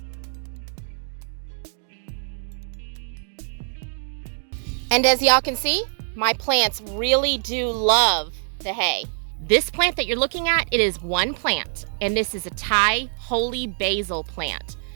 And as y'all can see, my plants really do love the hay. This plant that you're looking at, it is one plant, and this is a Thai holy basil plant.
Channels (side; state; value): left; silent; digital silence